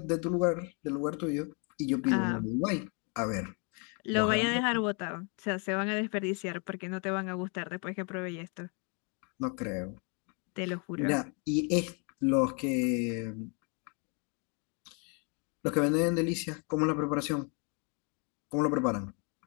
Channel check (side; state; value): right; quieter; 36.1 dB